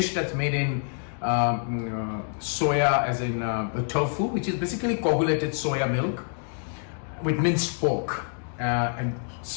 that's made in soya, as in tofu, which is basically coagulated soya milk with minced pork, and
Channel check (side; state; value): right; silent; 60 dB below the other